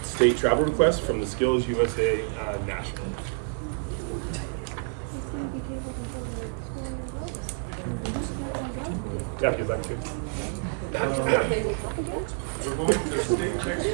state travel requests from the Skills USA National. Yeah, if you'd like to. We're going to the state next week,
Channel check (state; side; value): silent; left; 59 dB below the other